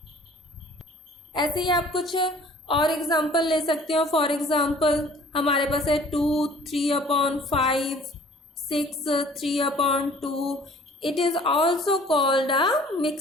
ऐसे ही आप कुछ और एग्जाम्पल ले सकते हो। फॉर एग्जाम्पल हमारे पास है 2 3/5, 6 3/2। It is also called a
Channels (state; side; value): normal; both; correlation 0.52